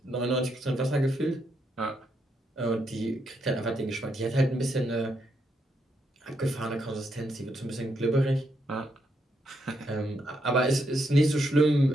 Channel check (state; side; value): normal; both; correlation 0.79